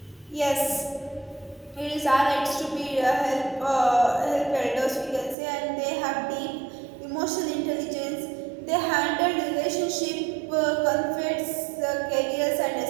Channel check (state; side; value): drops out; left; at 5.4 s